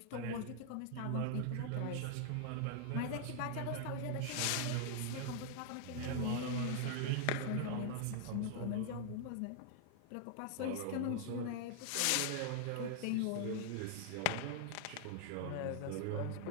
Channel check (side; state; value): both; different; correlation 0.00